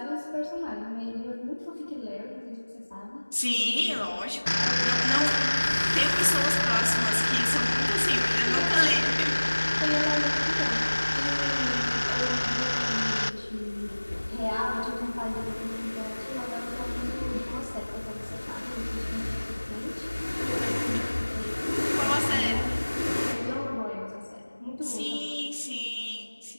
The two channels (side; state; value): both; inverted; correlation -1.00